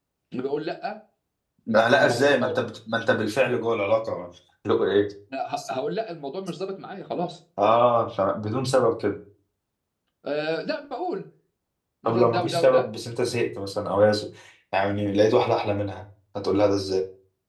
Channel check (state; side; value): identical; both; correlation 1.00